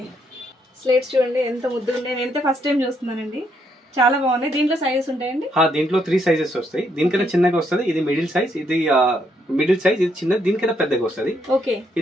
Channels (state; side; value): normal; both; correlation 0.74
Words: స్లేట్స్ చూడండి ఎంత ముద్దుగా ఉన్నాయి. నేనైతే ఫస్ట్ టైం చూస్తున్నానండి, చాలా బాగున్నాయి. దీంట్లో సైజెస్ ఉంటాయండి? దీంట్లో 3 సైజెస్ వస్తాయి. దీనికన్నా చిన్నగా వస్తుంది, ఇది మిడిల్ సైజ్, ఇది చిన్నది, దీనికన్నా పెద్దగా వస్తుంది.